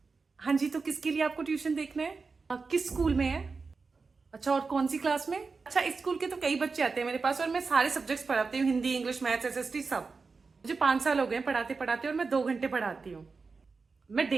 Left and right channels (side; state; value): left; quieter; 4.5 dB